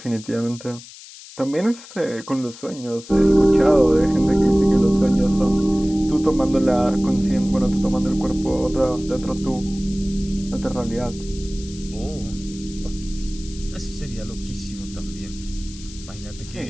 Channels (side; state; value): left; noise; hiss, 17 dB below the sound